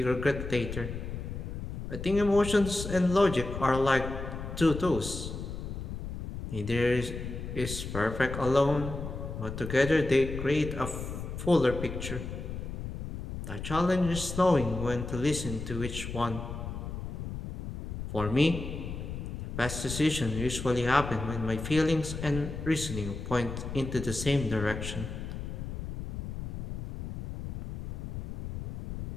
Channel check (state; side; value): noise; left; rumble, 6 dB below the sound